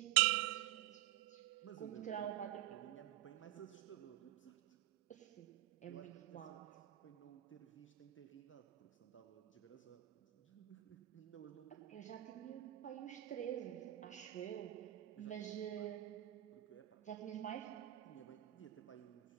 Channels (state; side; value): quieter; left; 15.5 dB